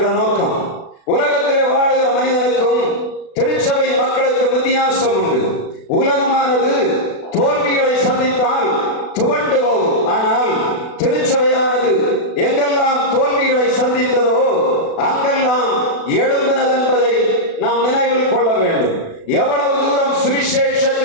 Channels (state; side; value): late; right; 36 ms